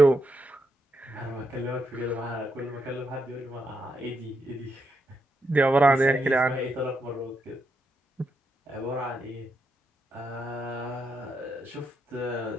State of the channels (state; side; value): normal; both; correlation 0.81